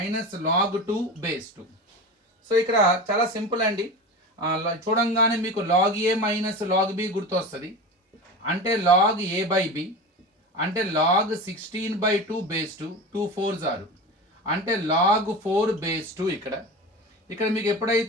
log 2 base 2. So ఇక్కడ చాలా సింపుల్ అండి. చూడంగానే మీకు log A minus log B గుర్తొస్తుంది. అంటే లాగ్ ఏ బై బి అంటే లాగ్ 16/2 బేస్ 2, 2 4s ఆరు, అంటే లాగ్ 4 బేస్ 2. ఇక్కడ మీకు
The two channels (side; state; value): both; normal; correlation 0.29